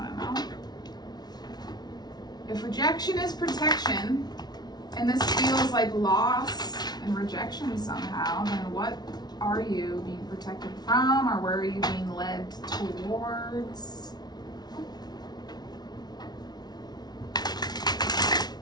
to know. If rejection is protection, and this feels like loss and rejection somehow, then what are you being protected from, or where are you being led towards?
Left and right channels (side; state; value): right; late; 0.19 ms